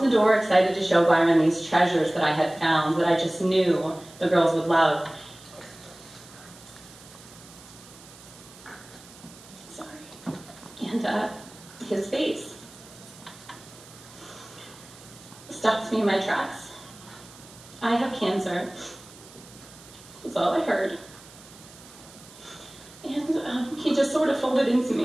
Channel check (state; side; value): noise; right; hiss, 21 dB below the sound